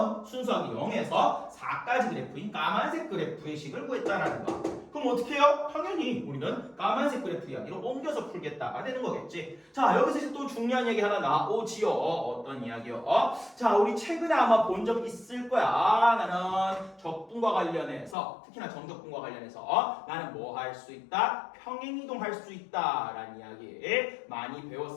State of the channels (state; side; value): drops out; right; at 18.2 s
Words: 순수하게 0에서 4까지 그래프인 까만색 그래프의 식을 구했다라는 거야. 그럼 어떻게 해요? 당연히 우리는 까만색 그래프 이야기로 옮겨서 풀겠다가 되는 거겠지. 자, 여기서 이제 또 중요한 얘기 하나 나오지요. 어떤 이야기요? 자, 우리 최근에 아마 본 적 있을 거야. 나는 적분과 관련해서, 특히나 정적분과 관련해서 나는 뭐 할 수 있다? 평행이동 할 수 있다 라는 이야기 많이